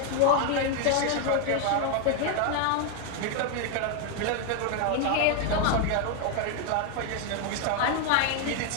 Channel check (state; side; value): different; both; correlation 0.01